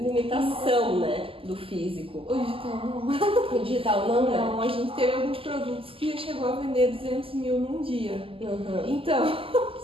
né, do físico. O digital não. O digital não, né? Não, a gente teve alguns produtos que chegou a vender 200 mil num dia. Então,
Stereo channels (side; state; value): left; late; 0.26 ms